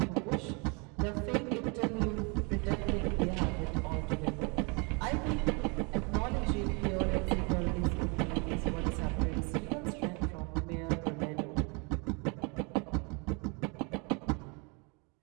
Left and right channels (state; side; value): quieter; left; 31.9 dB